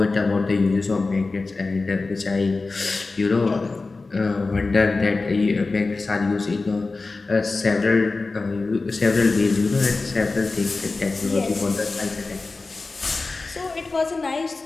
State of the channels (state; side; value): quieter; right; 3.7 dB